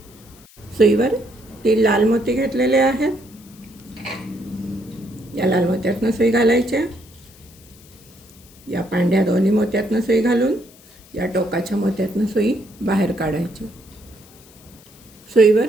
सुईवर 3 लाल मोती घेतलेले आहेत. या लाल मोत्यातनं सुई घालायची, या पांढऱ्या दोन्ही मोत्यातनं सुई घालून या टोकाच्या मोत्यातनं सुई बाहेर काढायची. सुईवर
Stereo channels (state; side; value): noise; left; hiss, 25 dB below the sound